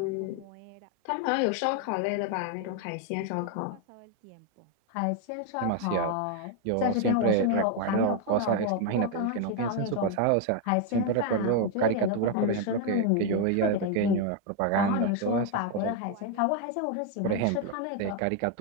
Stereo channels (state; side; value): different; both; correlation 0.01